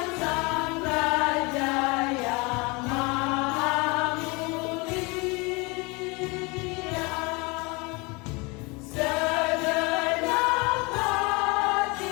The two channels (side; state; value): right; quieter; 27.2 dB